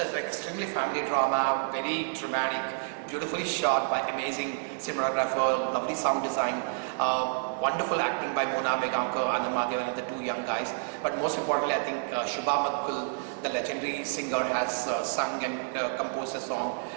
it's like extremely family drama, very dramatic, beautifully shot by amazing cinematographer, lovely sound design, wonderful acting by Mona Vegankar and Madhavan and the two young guys. But most importantly, I think Shubha Matkul, the legendary singer, has sung and composed a song.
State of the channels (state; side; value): silent; left; digital silence